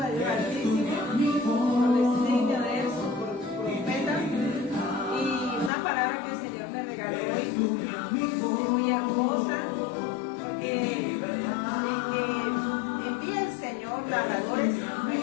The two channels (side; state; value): right; drops out; at 5.7 s